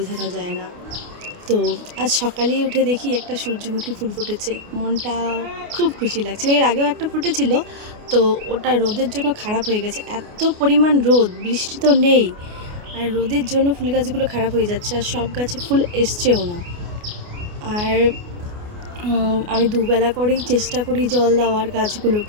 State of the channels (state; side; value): late; left; 29 ms